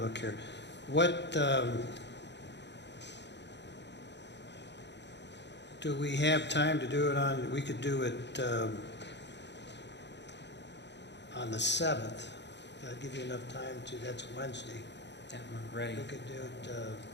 here. What, do we have time to do it on, we could do it on the 7th. That'll give you enough time to, that's Wednesday. Yeah, we're ready. We could do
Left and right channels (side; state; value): right; late; 0.51 ms